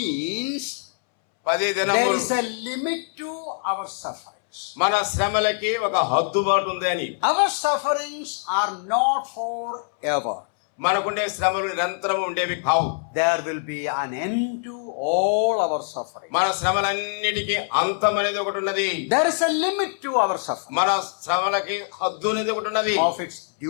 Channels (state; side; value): silent; right; 63 dB below the other